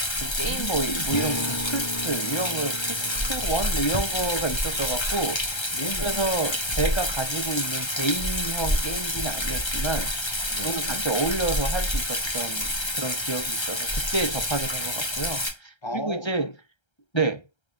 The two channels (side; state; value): right; late; 1.3 ms